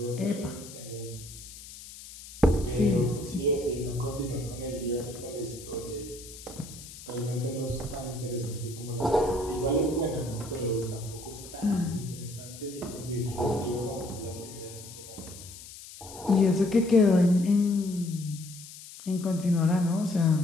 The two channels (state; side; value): noise; left; hiss, 15 dB below the sound